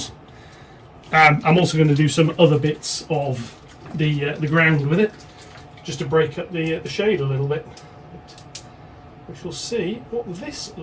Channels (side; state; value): both; identical; correlation 1.00